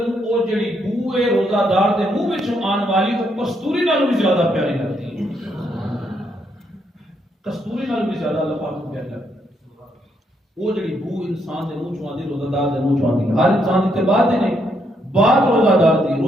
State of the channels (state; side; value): normal; both; correlation 0.76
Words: او جڑی بو ہے روزہ دار دے منہ وچوں آن والی او کستوری نالوں بھی زیادہ پیاری لگتی ہے. کستوری نالوں بھی زیادہ اللہ پاک کو پیاری لگتی ہے. وہ جڑی بو انسان دے منہ چوں آندی روزہ دار دے منہ چوں آندی ہر انسان دی بات نہیں بات روزہ دار دی